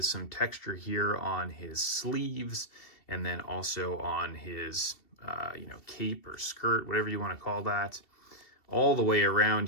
some texture here on his sleeves, and then also on his you know, cape or skirt, whatever you want to call that. All the way around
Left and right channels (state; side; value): late; right; 2.7 ms